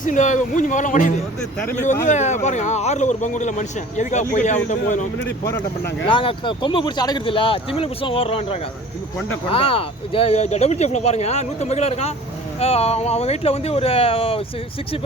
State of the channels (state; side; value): normal; both; correlation 0.45